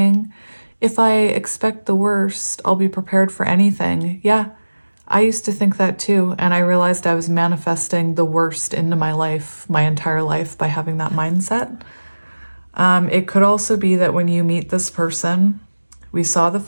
if I expect the worst, I'll be prepared for anything. Yeah, I used to think that too. And I realized I was manifesting the worst into my life, my entire life, by having that mindset. It could also be that when you meet this person, we saw the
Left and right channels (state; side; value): inverted; both; correlation -1.00